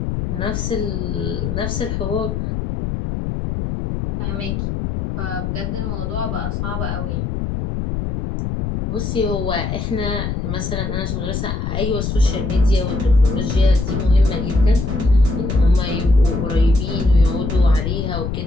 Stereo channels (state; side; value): noise; left; rumble, 3 dB below the sound